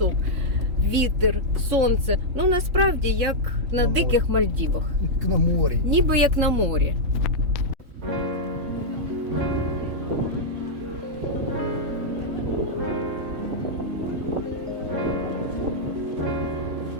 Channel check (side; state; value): left; late; 3.6 ms